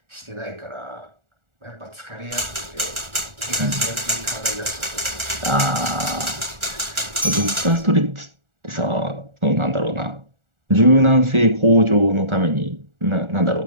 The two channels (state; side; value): late; left; 1.4 ms